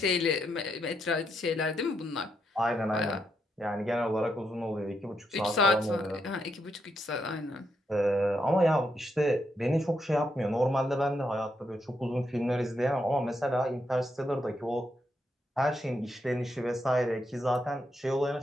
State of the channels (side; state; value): both; normal; correlation 0.80